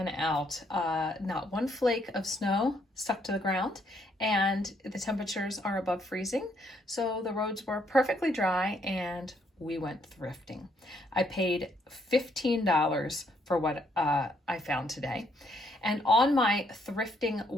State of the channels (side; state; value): both; normal; correlation 0.71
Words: out. Not one flake of snow stuck to the ground, and the temperatures are above freezing, so the roads were perfectly dry and we went thrifting. I paid $15 for what I found today. And on my thrifting